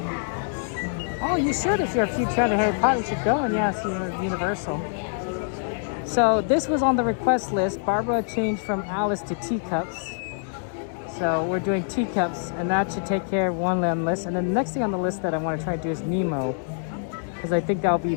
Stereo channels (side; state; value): right; silent; digital silence